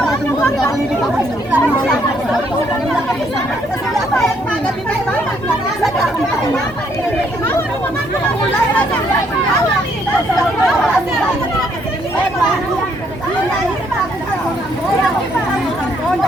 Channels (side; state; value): both; normal; correlation 0.70